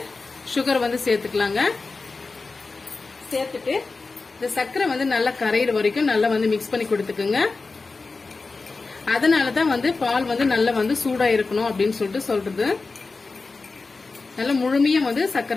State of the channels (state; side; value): quieter; right; 4.0 dB